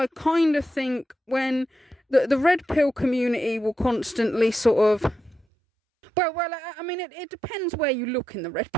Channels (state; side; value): drops out; left; at 5.5 s